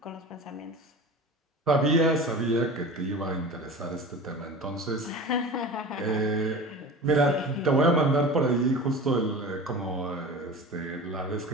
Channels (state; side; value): normal; both; correlation 0.34